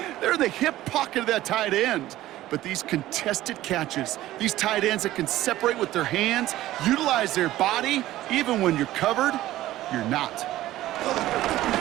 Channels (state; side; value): quieter; left; 15.2 dB